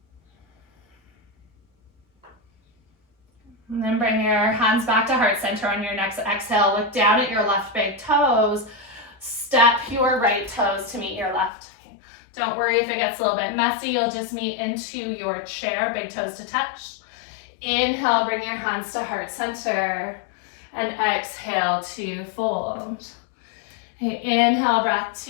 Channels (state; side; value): drops out; right; at 11.5 s